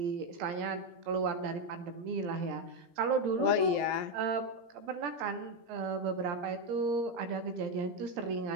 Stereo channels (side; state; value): left; late; 17 ms